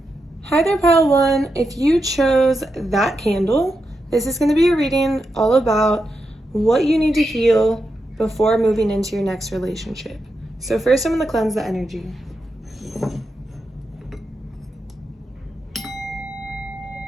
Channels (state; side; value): normal; both; correlation 0.87